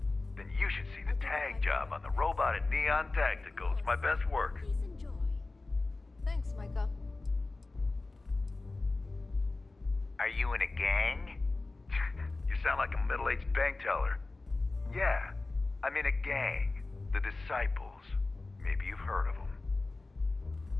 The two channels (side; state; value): right; quieter; 3.3 dB